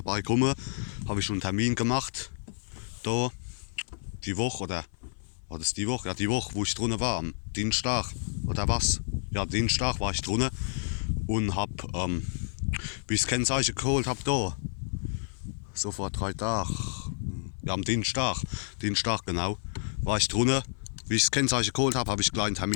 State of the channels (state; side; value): silent; right; 56 dB below the other